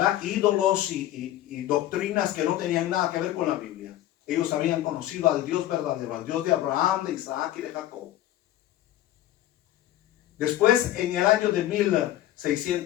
ídolos y doctrinas que no tenían nada que ver con la Biblia. Ellos habían conocido al Dios verdadero, al Dios de Abraham, de Isaac y de Jacob. Después, en el año de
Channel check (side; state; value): right; quieter; 13.7 dB